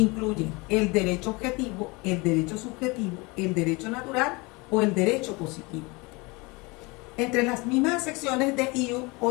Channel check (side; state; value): right; quieter; 26.1 dB